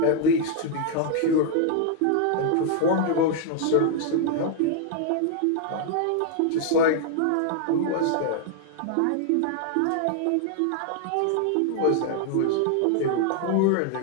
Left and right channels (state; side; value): different; both; correlation 0.00